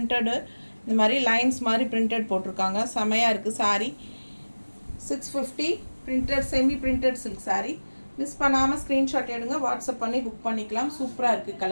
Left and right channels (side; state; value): both; inverted; correlation -1.00